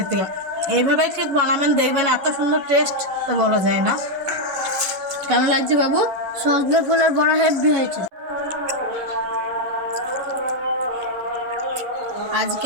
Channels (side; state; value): left; late; 11 ms